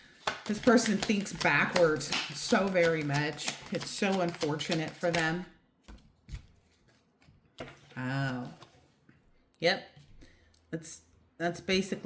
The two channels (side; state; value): both; identical; correlation 1.00